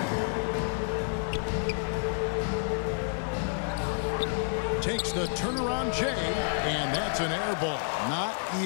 Takes the turnaround J, and that's an air ball. Not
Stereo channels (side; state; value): right; silent; 55 dB below the other